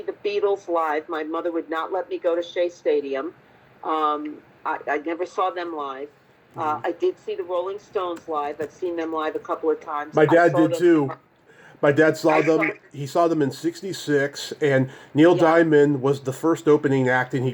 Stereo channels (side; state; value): both; identical; correlation 1.00